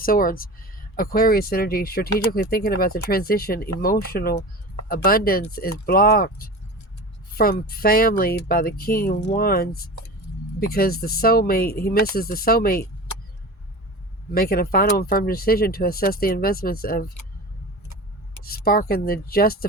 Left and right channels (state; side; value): normal; both; correlation 0.32